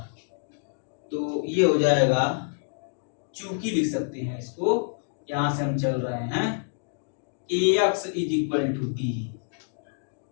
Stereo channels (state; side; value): silent; right; digital silence